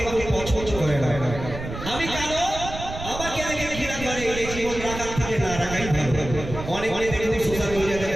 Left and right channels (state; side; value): noise; right; rumble, 9 dB below the sound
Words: কেউ পছন্দ করে না আমি কালো আমাকে দেখে ঘৃণা করে এই জীবন রাখার থেকে না রাখাই ভালো অনেক অনেক দেখুন সোশ্যাল মিডিয়া